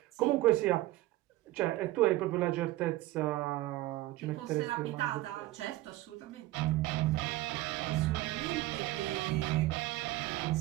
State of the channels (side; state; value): left; quieter; 17.6 dB